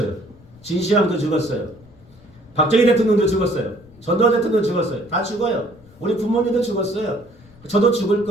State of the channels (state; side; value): noise; left; rumble, 25 dB below the sound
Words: 진시황도 죽었어요. 박정희 대통령도 죽었어요. 전두환 대통령 죽었어요. 다 죽어요. 우리 부모님도 죽었어요. 저도 죽을